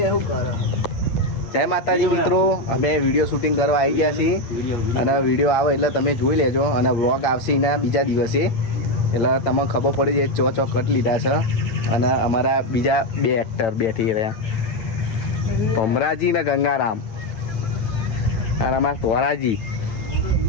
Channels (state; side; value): late; right; 9.0 ms